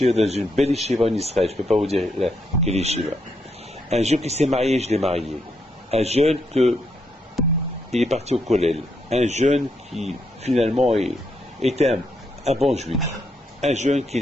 dans une belle yeshiva en Israël, je ne peux pas vous dire quelle yeshiva. Un jeune qui s'est marié, je l'ai marié. Un jeune il est parti au kollel. Un jeune qui finalement était un bon juif. Un jeune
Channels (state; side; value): normal; both; correlation 0.78